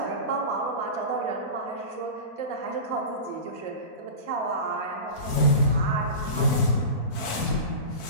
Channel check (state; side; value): late; right; 4.5 ms